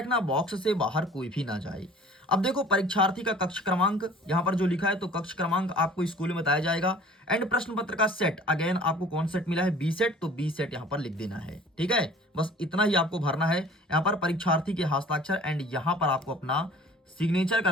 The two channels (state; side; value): normal; both; correlation 0.48